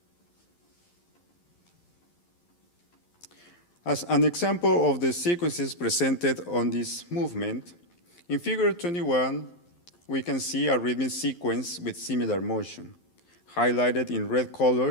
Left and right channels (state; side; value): late; right; 11 ms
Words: As an example of the sequences presented on this movement, in figure 21, we can see a rhythmic sequence with similar motion. Highlighted in red